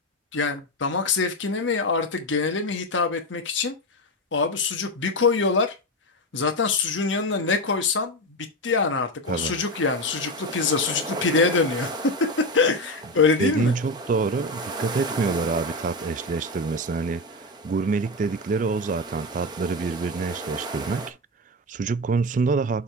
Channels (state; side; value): normal; both; correlation 0.16